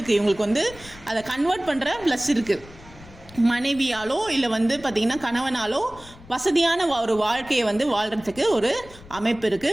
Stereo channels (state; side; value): noise; left; rumble, 20 dB below the sound